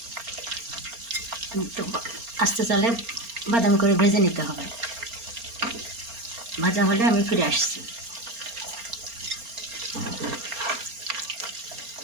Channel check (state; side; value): late; left; 4.3 ms